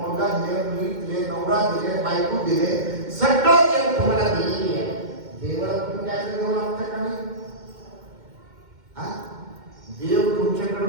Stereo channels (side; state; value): left; late; 2.1 ms